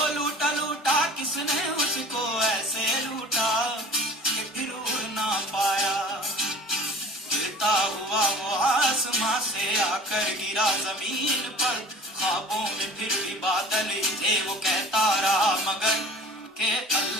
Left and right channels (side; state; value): both; normal; correlation 0.43